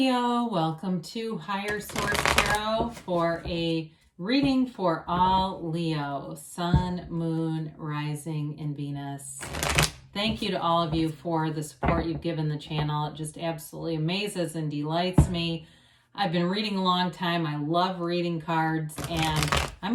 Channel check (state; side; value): identical; both; correlation 1.00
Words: welcome to Higher Source Tarot for a reading for all Leo, Sun, Moon, Rising, and Venus. Thank you to all of you for the support you've given the channel. It just absolutely amazes and delights me. I've been reading a long time. I love reading cards and I'm